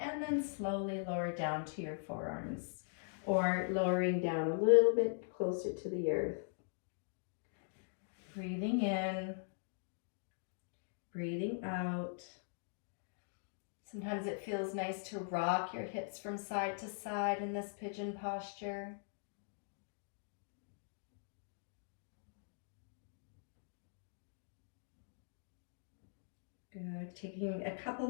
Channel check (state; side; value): silent; right; digital silence